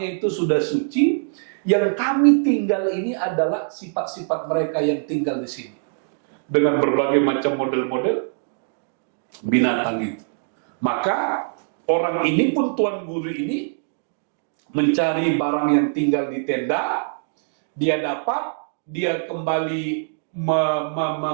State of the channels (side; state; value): left; silent; digital silence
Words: itu sudah suci. Yang kami tinggal ini adalah sifat-sifat mereka yang tinggal di sini dengan berbagai macam model-model binatang itu." Maka orang ini pun, tuan guru ini, mencari barang yang tinggal di tenda. Dia dapat, dia kembali